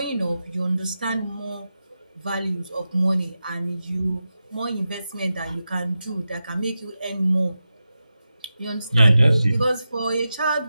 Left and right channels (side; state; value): both; inverted; correlation -0.91